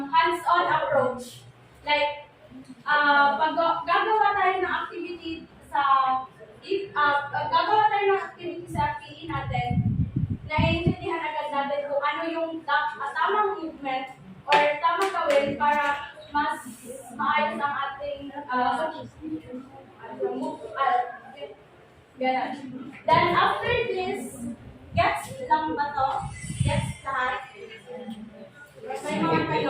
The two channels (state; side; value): identical; both; correlation 1.00